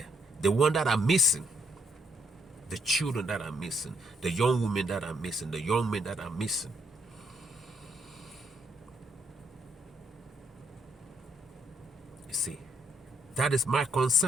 The ones that are missing. The children that are missing, the young women that are missing, the young men that are missing. You see, that is my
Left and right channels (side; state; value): both; normal; correlation 0.71